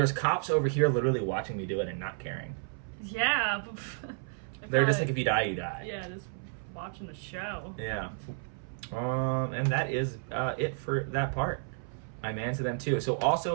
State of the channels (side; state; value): left; silent; 57 dB below the other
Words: cops over here literally watching me do it and not caring. Yeah. They're just like, if you die, you die. Yeah, just watching the show. Yeah. And that is it for that part. I man to them too. So